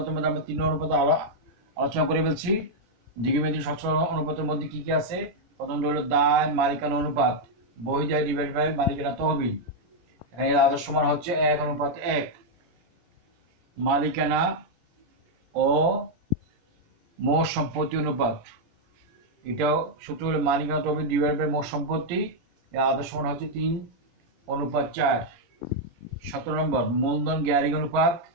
মধ্যে আমরা 3 অনুপাত আলোচনা করে ফেলছি। দীর্ঘমেয়াদী সচ্ছলতা অনুপাতের মধ্যে কি কি আছে? প্রথমটা হলো দায় মালিকানা অনুপাত, বহিদায় ডিভাইড বাই মালিকানা তহবিল। এখানে এর আদর্শ মান হচ্ছে 1:1। মালিকানা ও মোট সম্পত্তি অনুপাত, এটাও সূত্র হলো মালিকানা তহবিল ডিভাইড বাই মোট সম্পত্তি। এর আদর্শ মান হচ্ছে 3:4। 17 নম্বর, মূলধন গ্যারিং অনুপাত,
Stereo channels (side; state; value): left; late; 17 ms